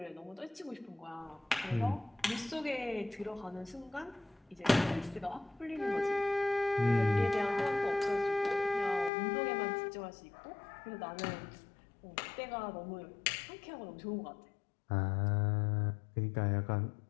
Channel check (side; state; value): right; drops out; at 9.1 s